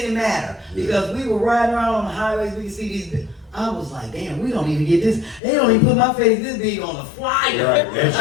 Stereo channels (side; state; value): right; drops out; at 5.4 s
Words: matter Yeah. because we were riding around on the highways, we could see these. I was like, damn, we don't even get this. They don't even put my face this big on the flyer. Right.